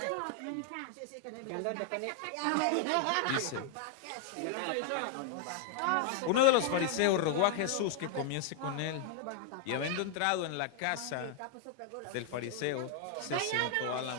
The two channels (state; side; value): different; both; correlation 0.00